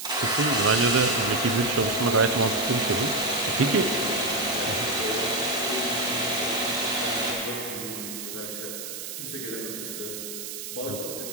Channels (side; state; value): right; noise; hiss, 8 dB below the sound